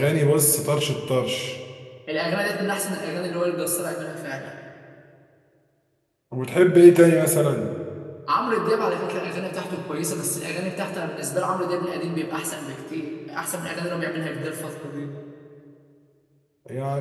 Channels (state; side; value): identical; both; correlation 1.00